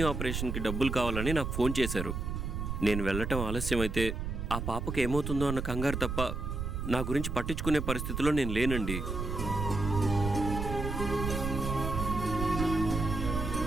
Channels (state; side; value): noise; right; rumble, 3 dB below the sound